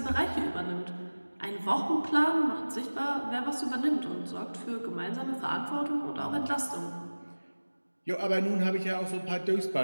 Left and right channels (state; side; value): inverted; both; correlation -1.00